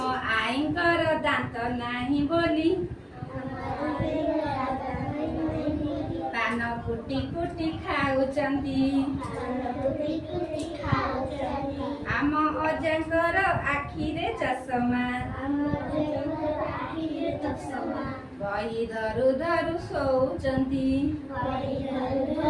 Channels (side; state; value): both; identical; correlation 1.00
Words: ଆଈଙ୍କର ଦାନ୍ତ ନାହିଁ ବୋଲି ପାନ କୁଟି କୁଟି ଖାଉଛନ୍ତି। ଆମ ଅଜାଙ୍କର ଆଖିରେ ଚଷମା, ବହି ଧରୁ ଧରୁ ଶୋଉଛନ୍ତି।